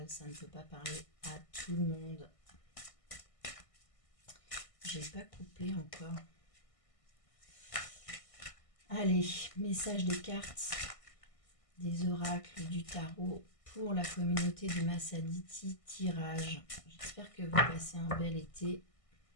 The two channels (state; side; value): late; right; 1.6 ms